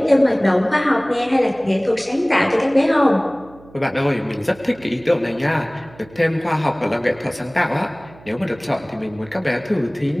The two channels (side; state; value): right; noise; hum, 23 dB below the sound